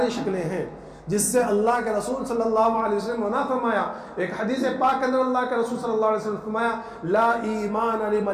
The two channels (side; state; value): both; identical; correlation 1.00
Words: شکلیں ہیں جس سے اللہ کے رسول صلی اللہ علیہ وسلم منع فرمایا. ایک حدیث پاک کے اندر اللہ کے رسول صلی اللہ علیہ وسلم فرمایا لا ایمان